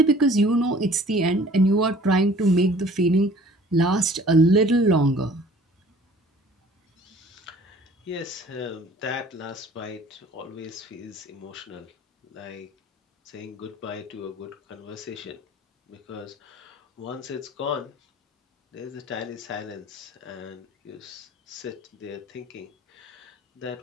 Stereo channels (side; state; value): both; normal; correlation 0.51